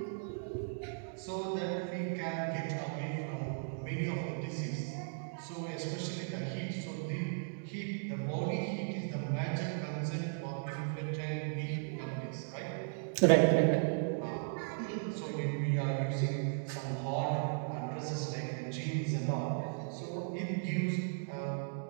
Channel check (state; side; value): silent; left; digital silence